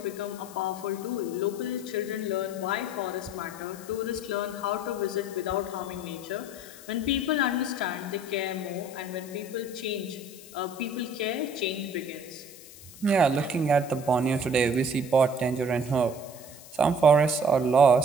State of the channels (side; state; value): left; noise; hiss, 18 dB below the sound